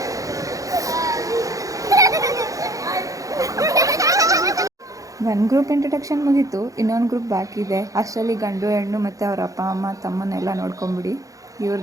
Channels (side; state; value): left; late; 0.16 ms